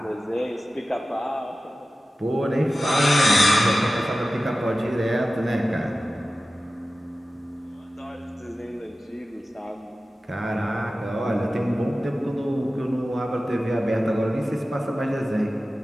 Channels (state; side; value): normal; both; correlation 0.95